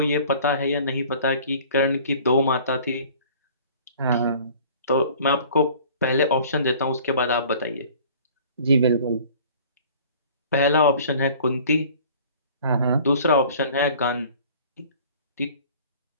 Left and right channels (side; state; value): both; inverted; correlation -0.49